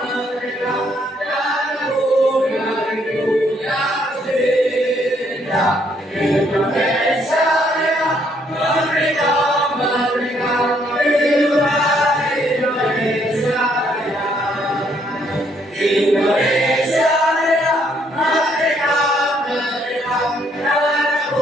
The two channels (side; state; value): both; normal; correlation 0.69